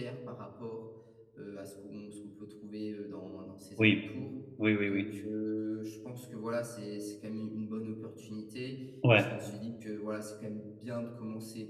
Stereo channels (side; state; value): both; identical; correlation 1.00